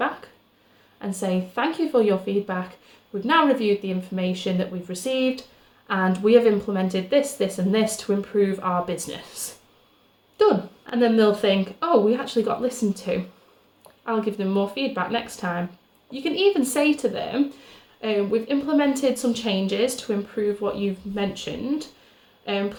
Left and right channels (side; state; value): both; identical; correlation 1.00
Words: and say, thank you for your feedback. we've now reviewed the information that we've received and we have implemented this, this and this to improve our business. Done. And then they'll think, oh, we actually got listened to. I'll give them more feedback next time. You can even say to them, we've implemented some changes to improve what you've mentioned.